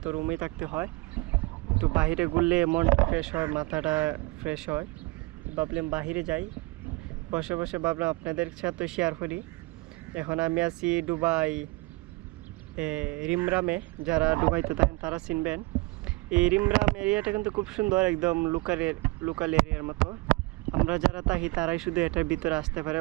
তো রুমেই থাকতে হয়, একটু বাইরে ঘুরলে মনটা ফ্রেশ হয়, মাথাটা ফ্রেশ হয়। ভাবলাম বাইরে যাই। বসে বসে ভাবলাম আপনাদের সাথে শেয়ার করি। এখন আমি আছি দুবাই, রিমরামে। যারা দুবাইতে থাকেন তারা চিনবেন। এই রিমরাম এরিয়াটা কিন্তু খুব সুন্দর, একদম লোকাল এরিয়ার মতো। আমরা যারা থাকি তারাই শুধু এটার ভিতরে আসতে পারে,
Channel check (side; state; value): left; quieter; 24.0 dB